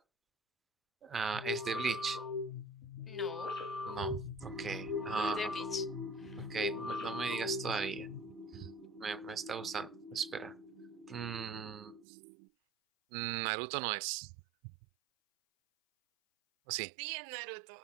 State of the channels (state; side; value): drops out; left; at 12.1 s